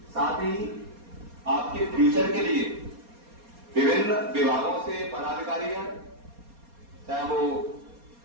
साथ ही आपके फ्यूचर के लिए विभिन्न विभागों से पदाधिकारी हैं, चाहे वो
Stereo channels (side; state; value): left; late; 4.2 ms